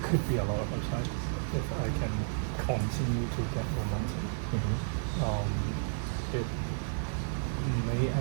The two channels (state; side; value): silent; left; digital silence